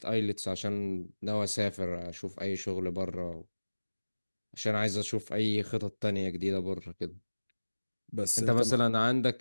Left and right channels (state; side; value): inverted; both; correlation -1.00